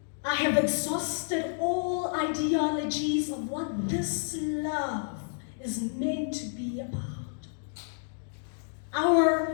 I have exhausted all ideologies of what this love is meant to be about.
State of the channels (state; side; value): silent; right; digital silence